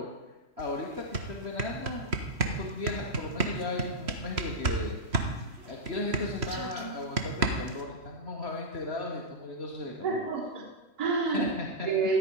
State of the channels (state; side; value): late; left; 3.1 ms